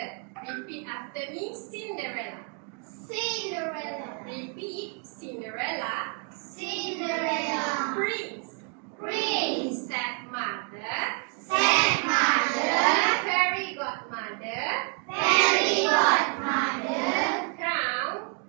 Repeat after me, Cinderella. Cinderella! Repeat, Cinderella. Cinderella! Prince. Prince! Stepmother. Stepmother! Fairy godmother. Fairy godmother! Crown.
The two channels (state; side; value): quieter; left; 38.4 dB